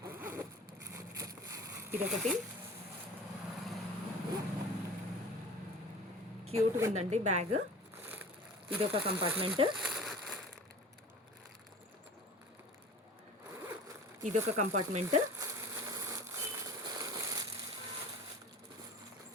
ఇదొకటి క్యూట్గా ఉందండి బ్యాగ్. ఇదొక కంపార్ట్మెంట్, ఇదొక కంపార్ట్మెంట్,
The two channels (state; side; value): normal; both; correlation 0.39